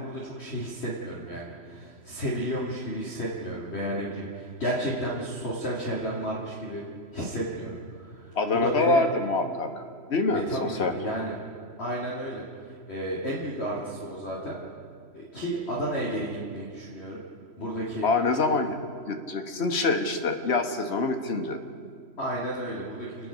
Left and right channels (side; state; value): right; late; 3.1 ms